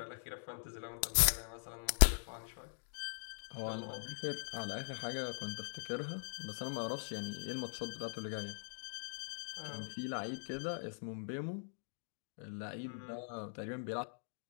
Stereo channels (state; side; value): silent; right; digital silence